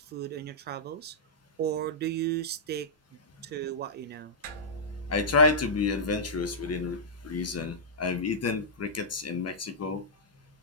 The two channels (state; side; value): normal; both; correlation -0.13